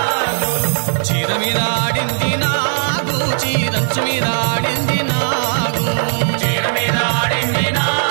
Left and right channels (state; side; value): silent; left; digital silence